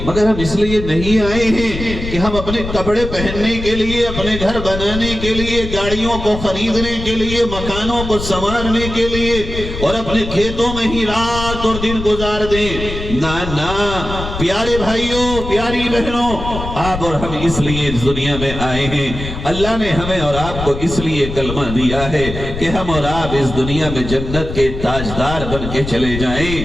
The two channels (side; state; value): left; noise; rumble, 7 dB below the sound